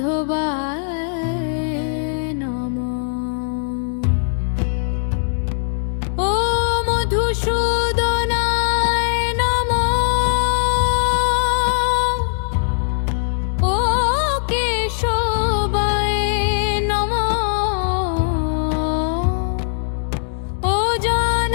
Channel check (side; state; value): right; silent; digital silence